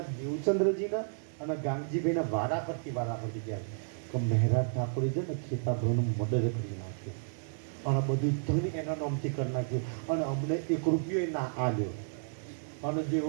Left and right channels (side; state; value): left; silent; digital silence